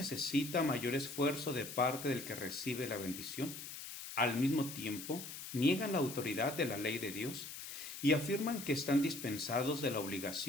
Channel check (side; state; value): left; noise; hiss, 9 dB below the sound